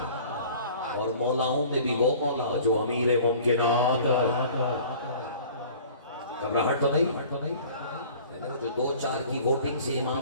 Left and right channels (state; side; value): inverted; both; correlation -0.46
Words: اور مولاؤں میں بھی وہ مولا جو امیر ممکنات ہے. گھبراہٹ تو نہیں, جو 2-4 کی ووٹنگ سے